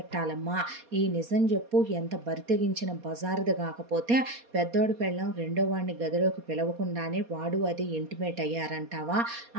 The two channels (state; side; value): late; left; 4.2 ms